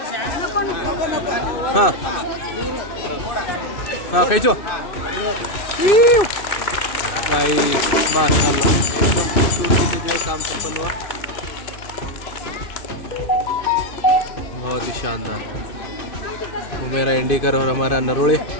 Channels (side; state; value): right; late; 2.6 ms